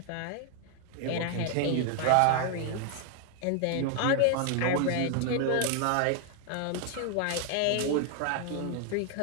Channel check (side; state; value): both; different; correlation 0.00